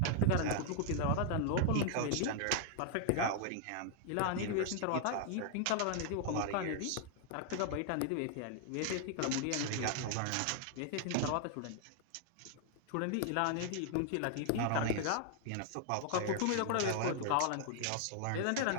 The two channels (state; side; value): different; both; correlation 0.00